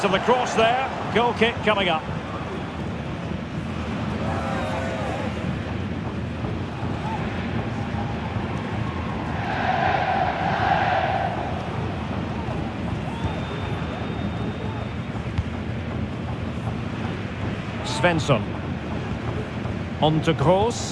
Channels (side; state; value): both; identical; correlation 1.00